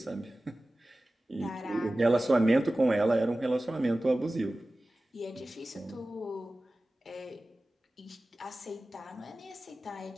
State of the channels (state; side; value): normal; both; correlation 0.96